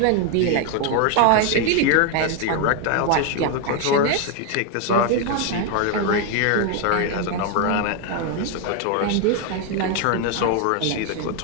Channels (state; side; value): different; both; correlation 0.01